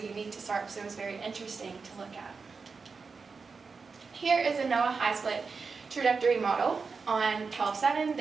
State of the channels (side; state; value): left; quieter; 4.8 dB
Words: to SARP, so it was very interesting to look at. Here is a NOAA high split trajectory model on 12/7,